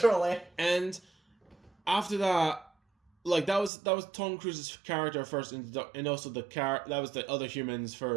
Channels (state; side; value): drops out; left; at 3.7 s